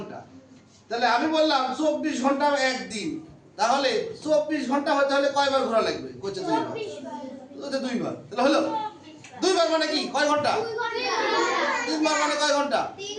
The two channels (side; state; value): both; identical; correlation 1.00